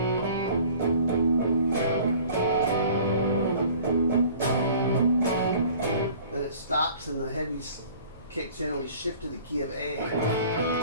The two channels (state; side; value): inverted; both; correlation -0.49